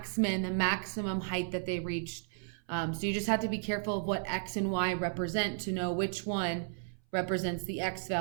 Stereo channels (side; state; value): left; silent; 55 dB below the other